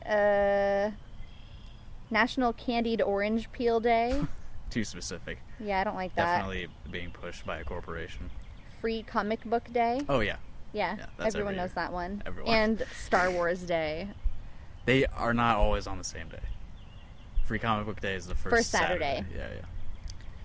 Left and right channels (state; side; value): identical; both; correlation 1.00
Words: National Candied Orange Peel Day. Too specific. Yeah, I don't like that. Definitely being pushed by a corporation. Free Comic Book Day. Oh yeah. Yeah, Yeah, that's everyone every knows year. that one. Everyone. And Star Wars Day. They are not always on the same day. Free Comic Book Day is the first Saturday. Yeah, yeah.